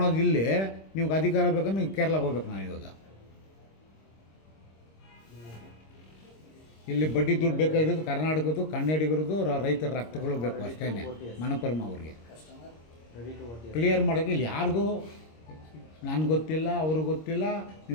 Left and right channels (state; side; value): late; right; 26 ms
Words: ಇಲ್ಲಿ ನಿಮ್ಗೆ ಅಧಿಕಾರ ಬೇಕಂದ್ರೆ ನೀವು ಕೇರಳಕ್ಕೆ ಹೋಗ್ಬೇಕು. ನಾನು ಇವಾಗ ಇಲ್ಲಿ ಬಡ್ಡಿ ದುಡ್ಡು ಬೇಕಾಗಿರೋದು ಕರ್ನಾಟಕದ್ದು, ಕನ್ನಡಿಗರದು, ರೈತರ ರಕ್ತಗಳು ಬೇಕು ಅಷ್ಟೇ. ಮನಪುರಮ ಅವ್ರಿಗೆ ಕ್ಲಿಯರ್ ಮಾಡೋಕ್ಕೆ ಇಲ್ಲಿ ಯಾರಿಗೂ ನನಗೆ ಗೊತ್ತಿಲ್ಲ, ಅವ್ರಿಗೆ ಗೊತ್ತಿಲ್ಲ.